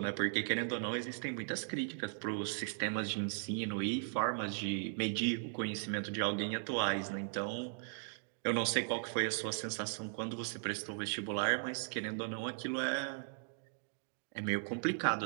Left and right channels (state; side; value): silent; left; digital silence